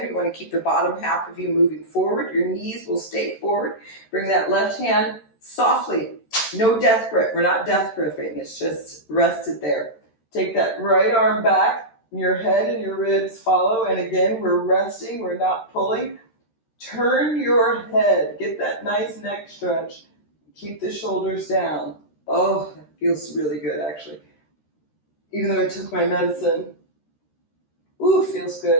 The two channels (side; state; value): right; late; 13 ms